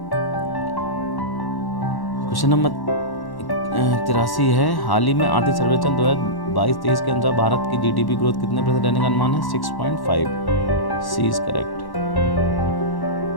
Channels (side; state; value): right; late; 1.1 ms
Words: क्वेश्चन नंबर 83 है, हाल ही में आर्थिक सर्वेक्षण 2022-23 के अनुसार भारत की GDP ग्रोथ कितने % रहने का अनुमान है? 6.5। सी इज करेक्ट।